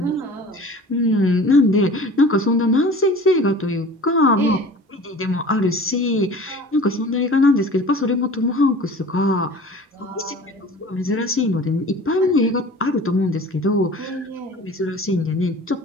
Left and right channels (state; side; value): normal; both; correlation 0.42